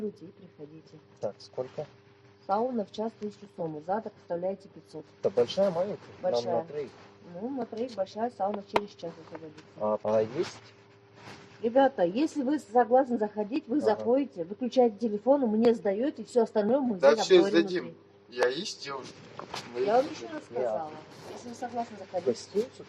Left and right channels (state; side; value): identical; both; correlation 1.00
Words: и приходите. Так, сколько? Сауна в час 1000 сомы, задаток оставляете 500. Это большая, маленькая? Большая. Нам на троих. Ну, на троих большая сауна через час освободится. А есть? Ребята, если вы согласны заходить, вы заходите, выключаете телефон, мне сдаете, и все остальное мы здесь обговорим внутри. Я есть девушка. Я вам еще раз сказала. Если вы согласны заходить. Гостиницу